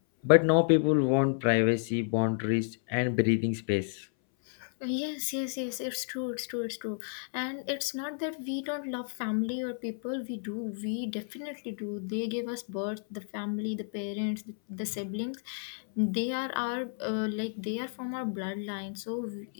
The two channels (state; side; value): silent; right; 57 dB below the other